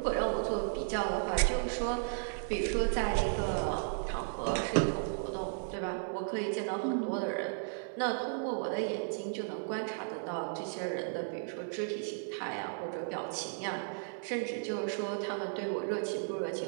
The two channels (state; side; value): silent; left; 55 dB below the other